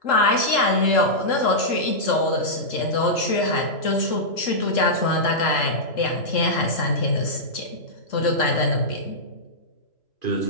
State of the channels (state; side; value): late; right; 3.7 ms